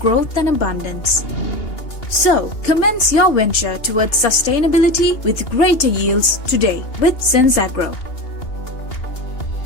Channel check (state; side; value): late; right; 2.8 ms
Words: and abundance. So, commence your venture towards sustainability with greater yields today with SenzAgro.